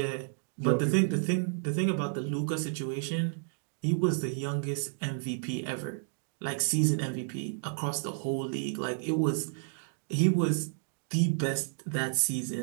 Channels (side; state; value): left; silent; digital silence